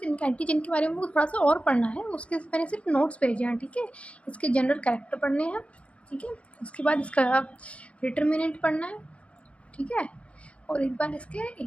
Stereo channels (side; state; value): right; late; 0.062 ms